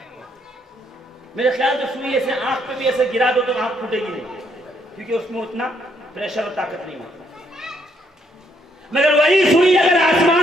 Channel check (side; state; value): both; normal; correlation 0.72